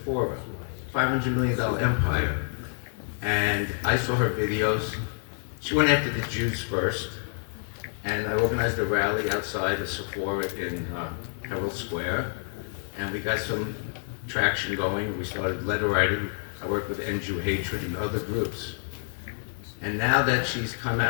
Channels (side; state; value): right; silent; digital silence